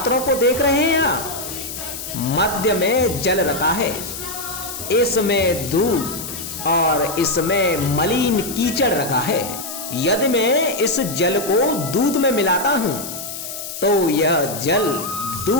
को देख रहे हैं आप? मध्य में जल रखा है, इसमें दूध और इसमें मलिन कीचड़ रखा है। यदि मैं इस जल को दूध में मिलाता हूं तो यह जल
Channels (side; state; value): left; noise; hiss, 8 dB below the sound